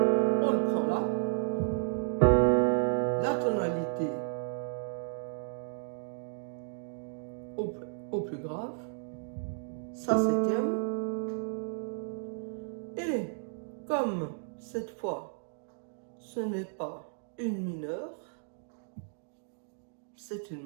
au plus grave, Sa septième, et comme cette fois ce n'est pas une mineure, c'est une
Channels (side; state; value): left; silent; digital silence